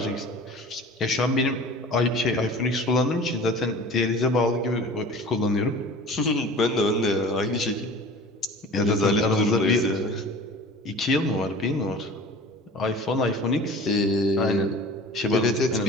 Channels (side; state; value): both; normal; correlation 0.41